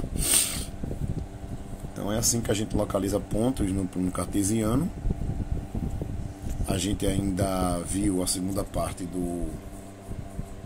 Então é assim que a gente localiza pontos no cartesiano. A gente ainda viu a segunda parte no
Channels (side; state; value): both; identical; correlation 1.00